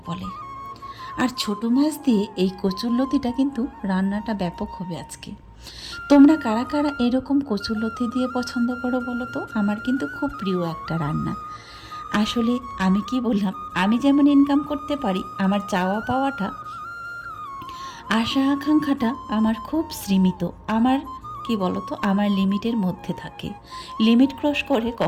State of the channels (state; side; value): identical; both; correlation 1.00